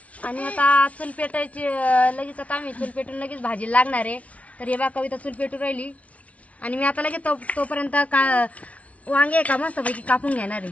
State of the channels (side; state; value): right; late; 0.066 ms